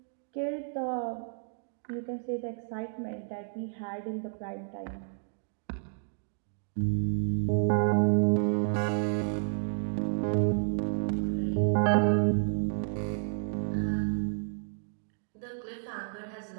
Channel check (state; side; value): silent; left; digital silence